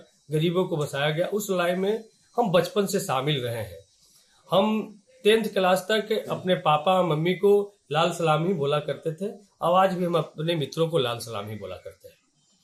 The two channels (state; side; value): identical; both; correlation 1.00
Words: गरीबों को बसाया गया। उस लड़ाई में हम बचपन से शामिल रहे हैं। हम 10th क्लास तक अपने पापा मम्मी को लाल सलाम ही बोला करते थे, और आज भी हम अपने मित्रों को लाल सलाम ही बोला करते हैं।